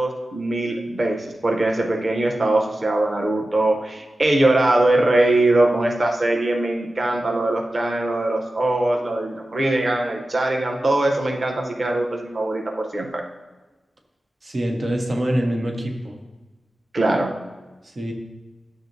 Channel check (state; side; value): normal; both; correlation 0.94